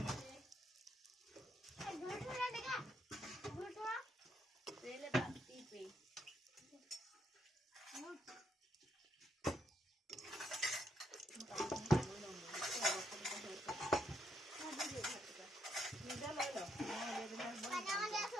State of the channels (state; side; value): normal; both; correlation 0.76